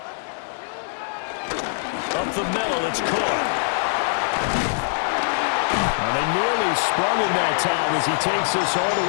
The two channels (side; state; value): right; silent; digital silence